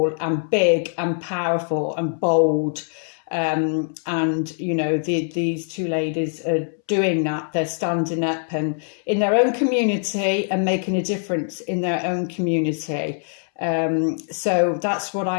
and big and powerful and bold? And you know, these two ladies are doing that. They're standing up and in their own community and making a difference in their own community. So that's what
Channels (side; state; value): right; silent; 64 dB below the other